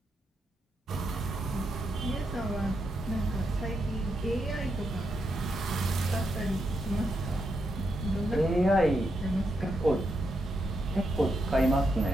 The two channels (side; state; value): both; normal; correlation 0.82